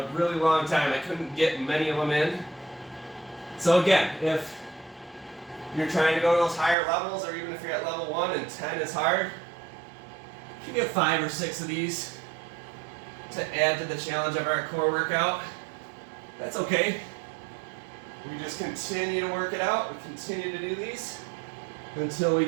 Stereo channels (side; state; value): left; drops out; at 6.8 s